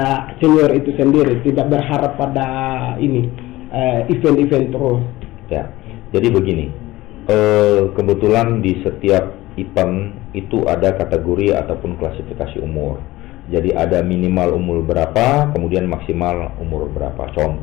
senior itu sendiri, tidak berharap pada ini event-event terus. Ya, jadi begini, kebetulan di setiap event itu ada kategori ataupun klasifikasi umur. Jadi ada minimal umur berapa, kemudian maksimal umur berapa.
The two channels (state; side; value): quieter; right; 18.1 dB